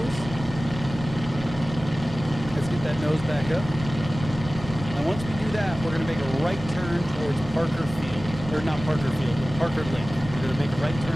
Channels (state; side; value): normal; both; correlation 0.97